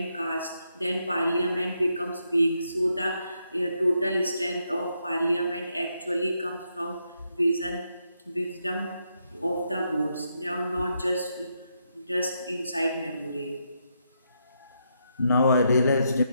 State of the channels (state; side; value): inverted; both; correlation -0.80